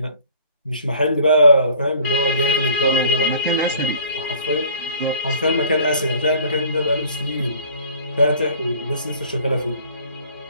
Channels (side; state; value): both; inverted; correlation -0.52